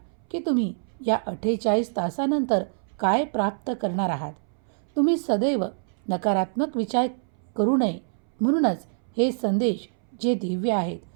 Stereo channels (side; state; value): left; silent; 61 dB below the other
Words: की तुम्ही या 48 तासानंतर काय प्राप्त करणार आहात. तुम्ही सदैव नकारात्मक विचार करू नये. म्हणूनच हे संदेश जे दिव्य आहेत,